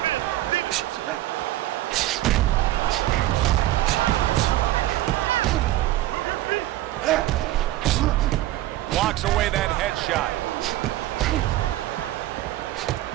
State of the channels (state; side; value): quieter; left; 15.3 dB